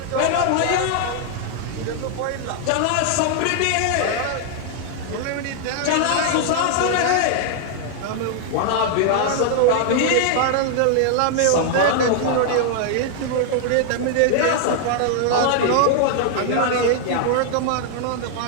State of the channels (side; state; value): both; different; correlation -0.01